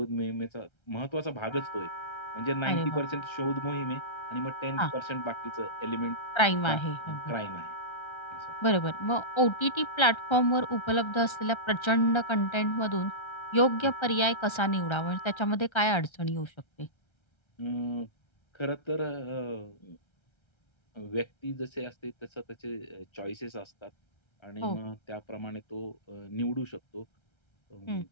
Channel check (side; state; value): right; late; 1.3 ms